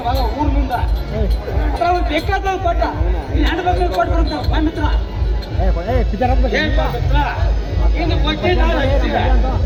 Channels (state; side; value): identical; both; correlation 1.00